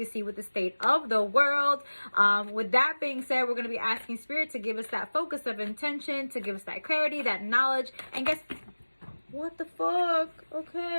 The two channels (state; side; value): inverted; both; correlation -1.00